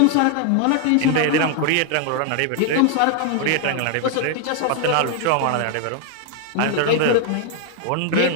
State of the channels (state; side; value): different; both; correlation 0.00